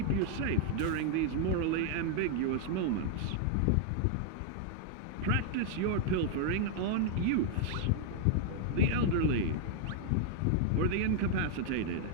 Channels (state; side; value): different; both; correlation 0.00